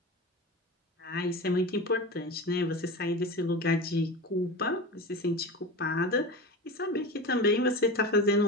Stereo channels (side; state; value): both; normal; correlation 0.27